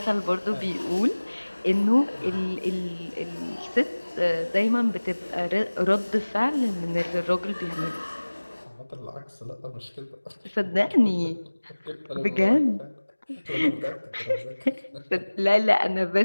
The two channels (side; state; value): both; inverted; correlation -1.00